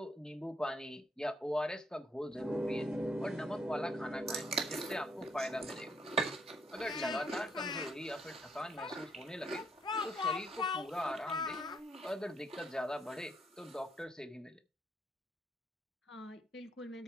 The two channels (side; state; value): both; normal; correlation 0.73